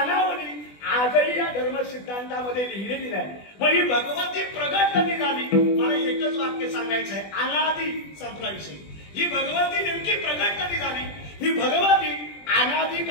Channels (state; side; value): late; right; 20 ms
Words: आजही या धर्म सिद्धांतामध्ये लिहिलेली नाही. मग ही भगवती प्रगट कधी झाली, मला एकच वाक्य सांगायचं आहे, अनादी संपला विषय. ही भगवती नेमकी प्रगट कधी झाली, ही भगवती अनादी